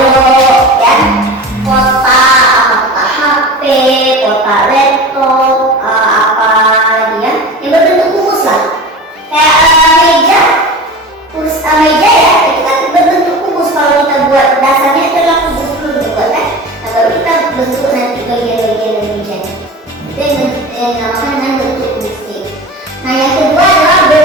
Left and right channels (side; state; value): both; normal; correlation 0.33